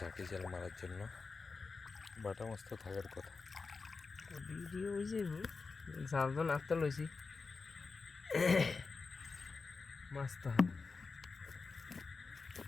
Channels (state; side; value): quieter; right; 4.4 dB